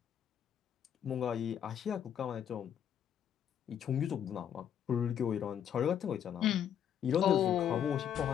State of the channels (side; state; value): right; quieter; 9.2 dB